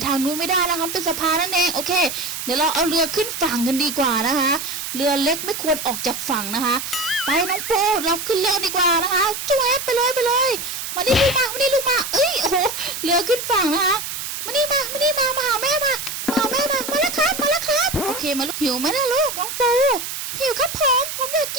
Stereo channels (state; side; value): noise; right; hiss, 6 dB below the sound